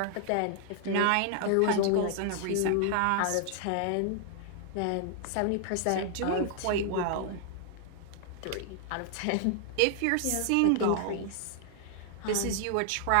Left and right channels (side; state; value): both; different; correlation 0.00